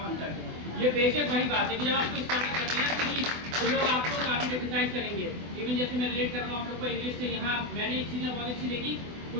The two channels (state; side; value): late; left; 24 ms